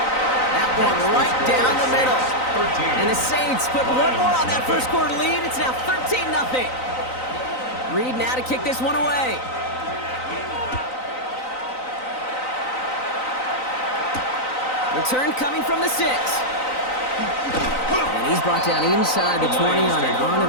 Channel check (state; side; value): late; right; 3.9 ms